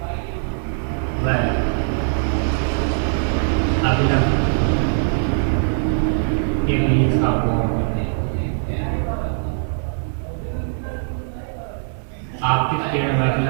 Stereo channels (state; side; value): silent; left; digital silence